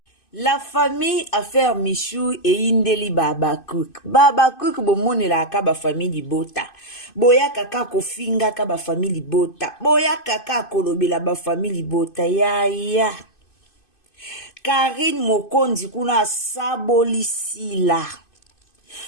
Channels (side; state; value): right; late; 2.5 ms